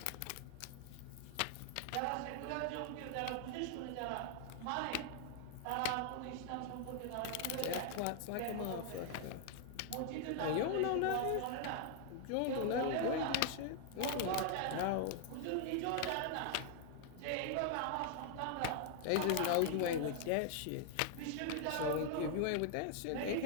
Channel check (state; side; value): different; both; correlation 0.00